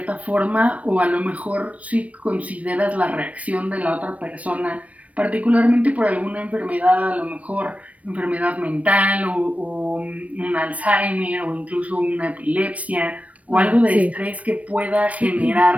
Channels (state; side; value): late; left; 0.066 ms